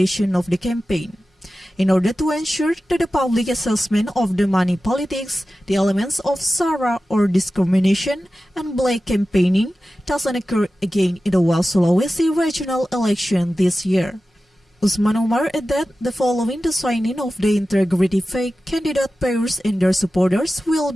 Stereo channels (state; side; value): normal; both; correlation 0.94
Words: of the campaign. In order to ensure that the public assessment of the money politics, the elements of SARA or discrimination and black campaigning doesn't occur again in the West Sulawesi regional election this year. Usman Umar added that following the signing of the integrity fake, candidate pairs and their supporters will